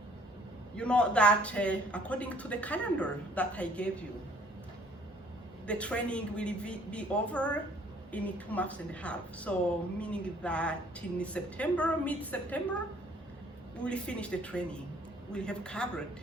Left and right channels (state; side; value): normal; both; correlation 0.59